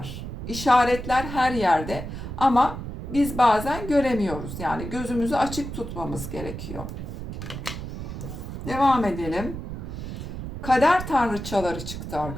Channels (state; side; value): noise; right; rumble, 8 dB below the sound